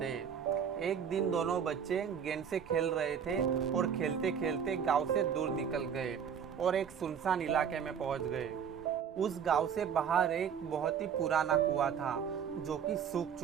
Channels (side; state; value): left; quieter; 7.7 dB